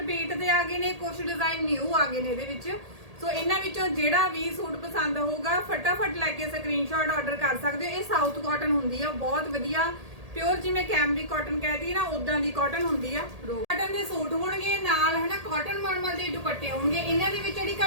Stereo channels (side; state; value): left; late; 1.8 ms